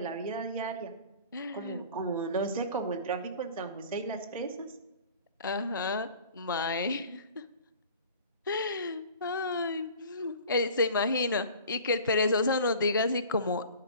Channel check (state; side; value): inverted; both; correlation -0.44